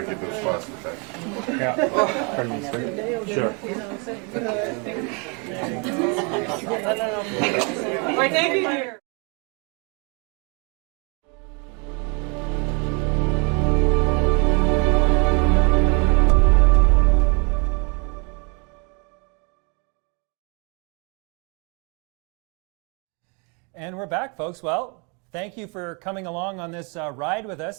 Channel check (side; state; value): left; quieter; 33.8 dB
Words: get those spots for that. Yeah. Sure. Why, thank you, dear. And we're back, folks. Well, thank you for coming along on this ride with